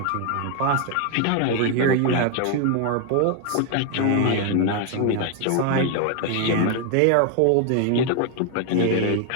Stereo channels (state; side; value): different; both; correlation 0.01